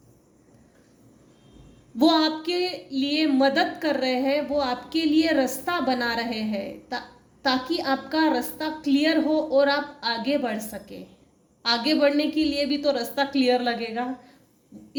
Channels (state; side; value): identical; both; correlation 1.00